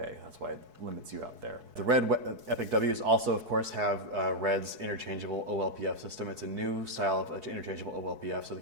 That's why it limits you out there. The Red Epic Ws also, of course, have Red's interchangeable OLPF system. It's a new style of interchangeable OLPF, so the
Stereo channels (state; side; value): late; left; 4.6 ms